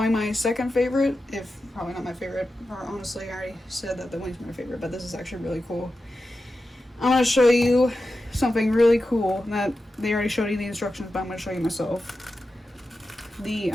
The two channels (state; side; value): normal; both; correlation 0.91